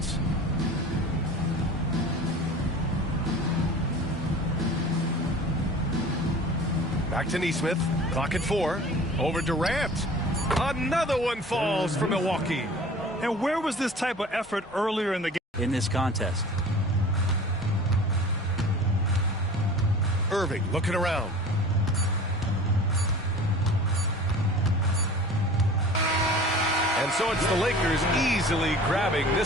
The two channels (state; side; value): normal; both; correlation 0.42